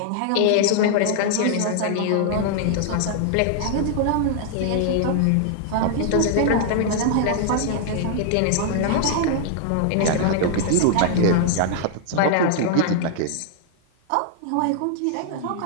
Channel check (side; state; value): both; different; correlation -0.01